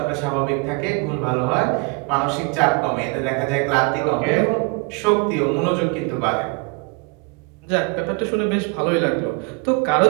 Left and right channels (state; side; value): quieter; left; 30.6 dB